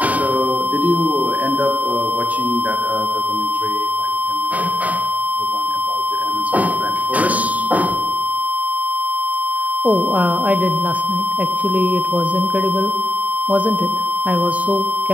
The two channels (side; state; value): left; late; 0.072 ms